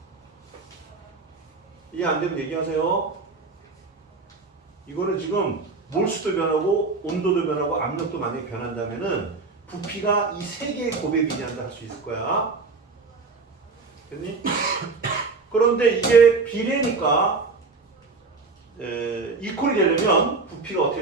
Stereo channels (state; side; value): quieter; left; 4.1 dB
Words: 이해 안 되면 얘기하세요. 이거는 지금 몰수도 변하고 온도도 변하고 압력도 만약에 변한다면은 부피가 이 세 개의 곱에 비례한다 할 수 있을 거야. 됐니? 그런데 이게 비례니까 이퀄이 되려면 부피가 어떻게